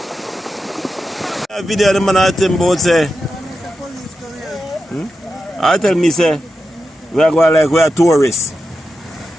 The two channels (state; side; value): normal; both; correlation 0.90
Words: Video the man I tell about say. I tell me say we are going like we are tourists.